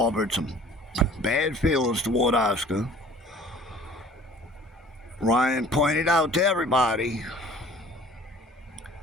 some bad feelings toward Oscar. Ryan pointed out to everybody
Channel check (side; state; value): both; normal; correlation 0.49